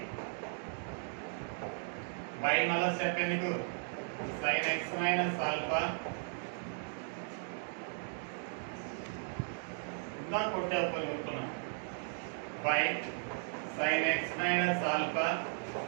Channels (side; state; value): left; silent; 54 dB below the other